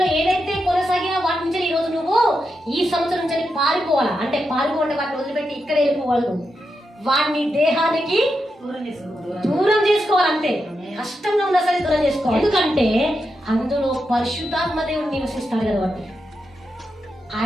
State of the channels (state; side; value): normal; both; correlation 0.86